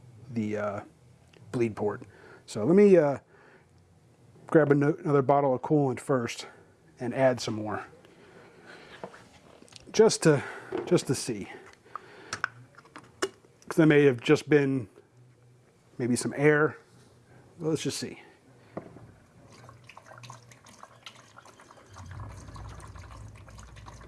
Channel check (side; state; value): both; identical; correlation 1.00